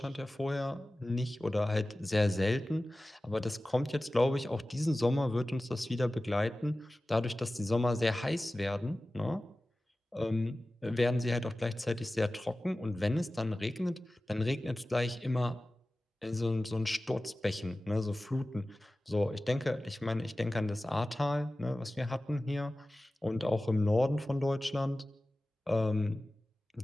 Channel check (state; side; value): normal; both; correlation 0.96